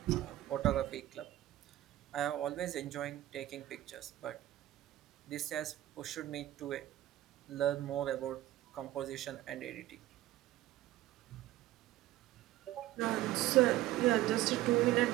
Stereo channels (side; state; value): left; quieter; 15.0 dB